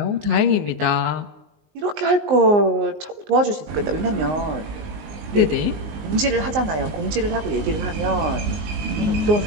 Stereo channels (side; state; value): left; late; 19 ms